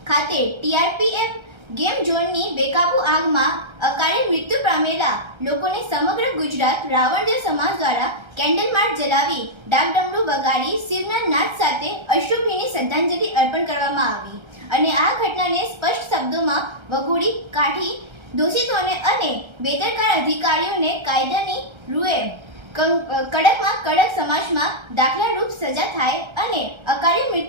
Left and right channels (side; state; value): left; late; 1.3 ms